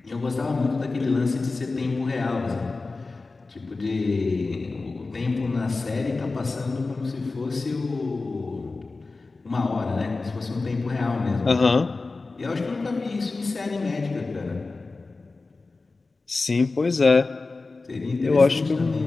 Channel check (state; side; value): quieter; right; 3.7 dB